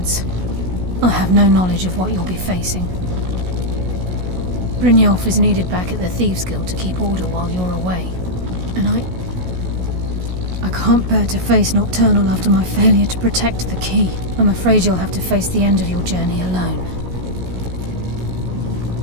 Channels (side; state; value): left; late; 16 ms